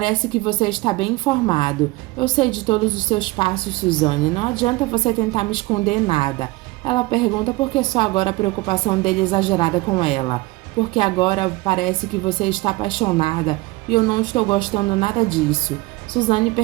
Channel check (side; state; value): left; quieter; 21.4 dB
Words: que você está bem informado. Eu sei de todos os seus passos, Suzane. Não adianta você tentar me esconder nada. Ela pergunta por que só agora a preocupação dele é exagerada com ela. Porque agora parece que você está apaixonada e eu não estou gostando nada disso. Suzane